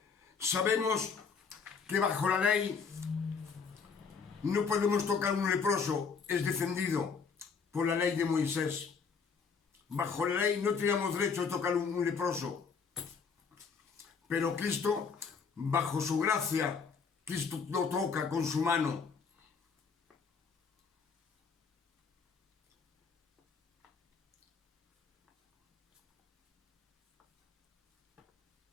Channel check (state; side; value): quieter; right; 5.6 dB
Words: Sabemos que bajo la ley no podemos tocar a un leproso, es defendido por la ley de Moisés. Bajo la ley no teníamos derecho a tocar a un leproso. Pero Cristo, bajo su gracia, Cristo lo toca con su mano.